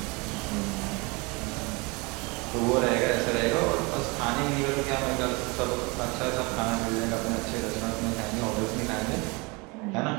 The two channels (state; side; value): quieter; left; 27.7 dB